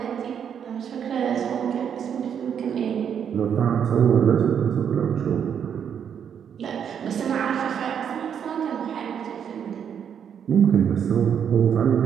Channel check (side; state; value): left; quieter; 8.1 dB